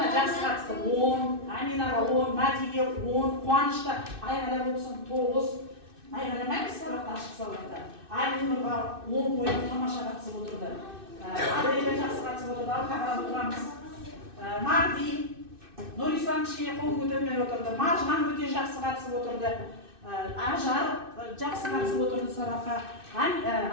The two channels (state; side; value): late; left; 2.6 ms